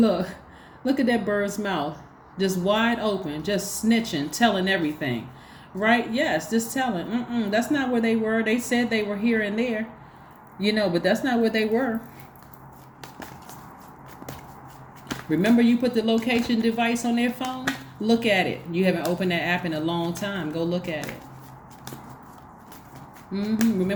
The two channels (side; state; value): both; identical; correlation 1.00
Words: at that bird's mouth, just wide open, just snitching, telling everything, right? Yes, just telling. That's not where they were. They said they were here and there, but that's not where they were. Remember, you put the location device on their phone? Look at it. You haven't opened that app in a long time. Go look at it.